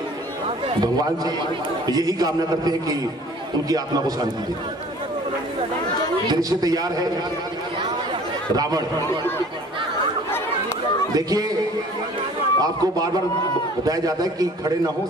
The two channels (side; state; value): both; normal; correlation 0.50